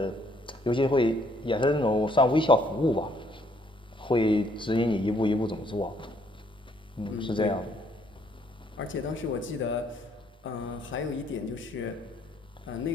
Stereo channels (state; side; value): normal; both; correlation 0.67